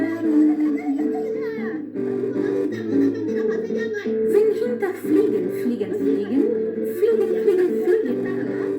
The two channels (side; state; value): both; identical; correlation 1.00